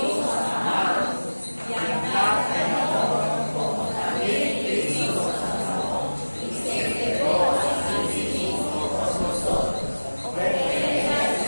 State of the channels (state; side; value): inverted; both; correlation -1.00